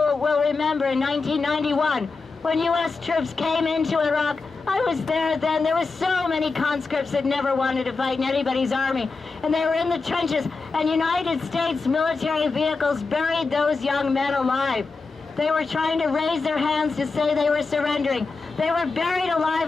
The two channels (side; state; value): right; quieter; 4.1 dB